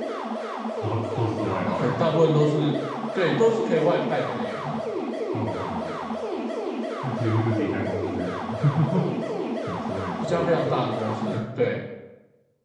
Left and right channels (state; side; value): identical; both; correlation 1.00